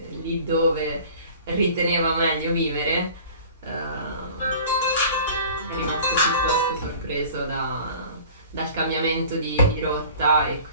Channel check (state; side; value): inverted; both; correlation -0.45